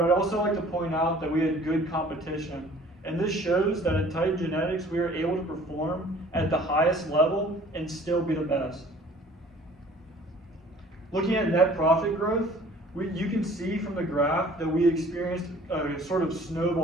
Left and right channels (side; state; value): both; normal; correlation 0.51